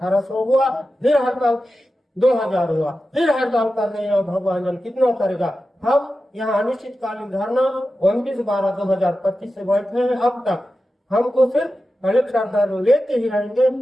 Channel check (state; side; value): normal; both; correlation 0.92